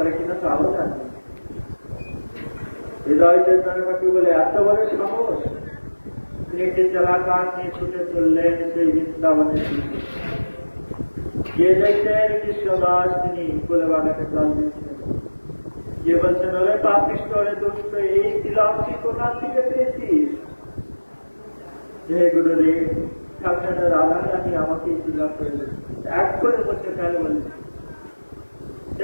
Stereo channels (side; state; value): both; inverted; correlation -1.00